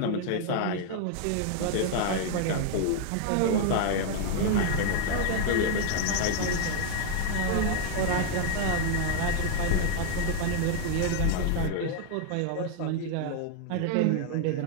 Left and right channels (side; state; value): both; different; correlation 0.00